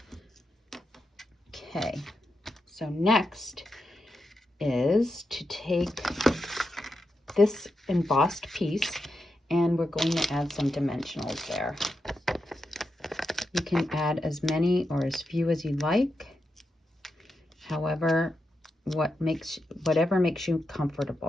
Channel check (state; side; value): normal; both; correlation 0.86